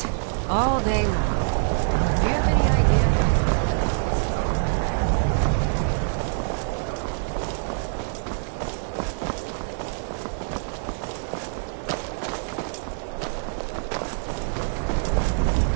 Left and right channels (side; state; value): left; silent; digital silence